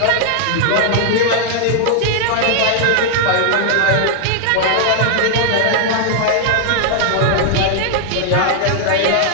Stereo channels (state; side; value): different; both; correlation 0.00